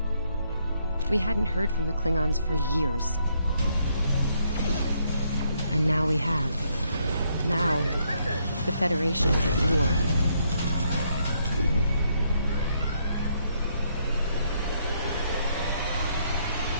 We hadn't heard from the Klingons for years. And now we have. Now, the Federation's at war.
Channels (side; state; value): both; inverted; correlation -0.73